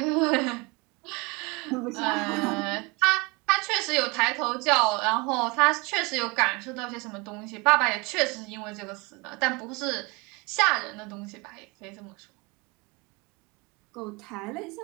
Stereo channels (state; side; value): quieter; left; 27.2 dB